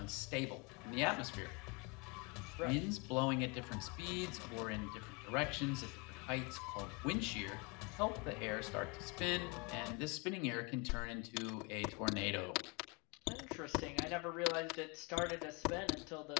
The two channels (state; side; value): quieter; right; 29.6 dB